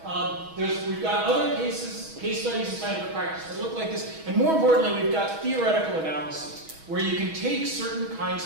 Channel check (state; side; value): late; left; 6.2 ms